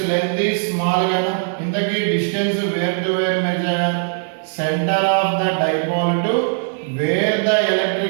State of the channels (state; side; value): silent; left; digital silence